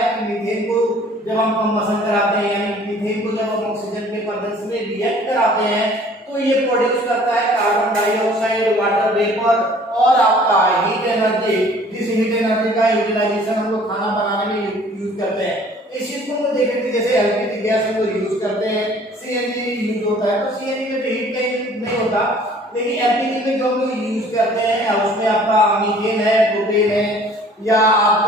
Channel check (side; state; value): both; normal; correlation 0.53